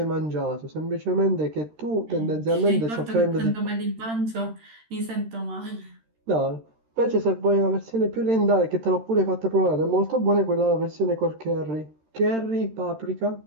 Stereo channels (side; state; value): left; late; 13 ms